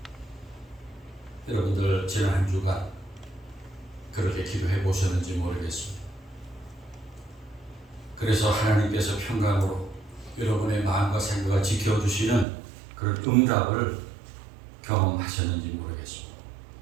여러분들 지난 한 주간 그렇게 기도해 보셨는지 모르겠습니다. 그래서 하나님께서 평강으로 여러분의 마음과 생각을 지켜주시는 그런 응답을 경험하셨는지 모르겠습니다.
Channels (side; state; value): left; drops out; at 12.5 s